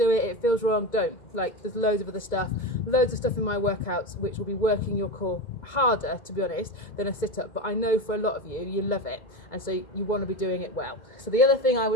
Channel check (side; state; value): right; late; 2.2 ms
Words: it, it feels wrong, don't. Like, there's loads of other stuff, loads of stuff in my workouts which will be working your core harder, to be honest, than a sit up. But I know for a lot of you, you love it, and so you want to be doing it well. So the other thing I